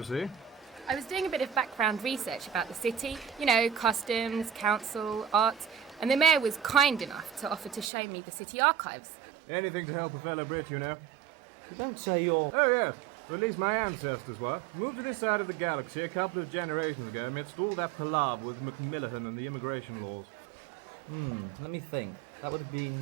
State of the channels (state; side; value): drops out; left; at 7.9 s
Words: see. I was doing a bit of background research about the city. You know, customs, council, art. And the mayor was kind enough to offer to show me the city archives. Anything to help a fellow Brit, you know. You don't say you're... Oh, yes. Or at least my ancestors were. Moved to this side of the galaxy a couple of generations ago amidst all that palaver with Macmillan and the immigration laws. Let me think. That would have